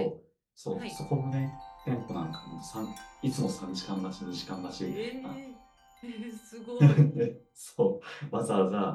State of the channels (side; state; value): both; identical; correlation 1.00